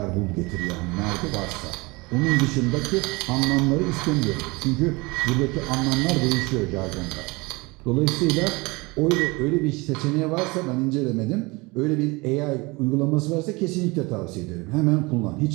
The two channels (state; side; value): quieter; left; 25.1 dB